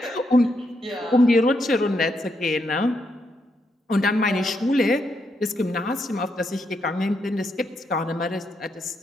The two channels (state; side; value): normal; both; correlation 0.80